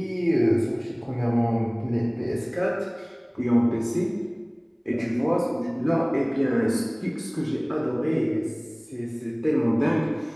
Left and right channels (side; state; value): both; identical; correlation 1.00